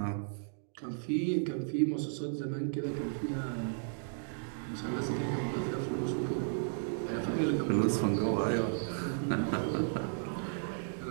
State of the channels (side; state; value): left; silent; digital silence